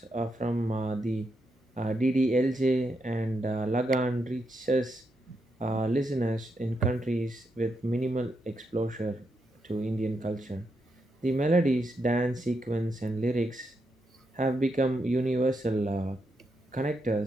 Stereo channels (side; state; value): both; normal; correlation 0.82